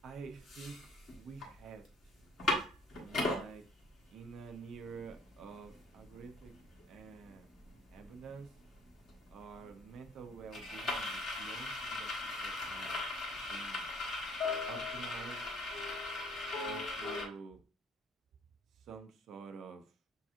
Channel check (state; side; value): normal; both; correlation 0.55